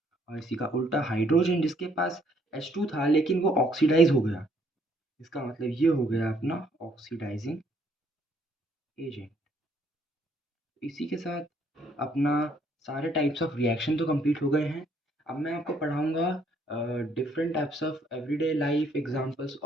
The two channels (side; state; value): both; normal; correlation 0.66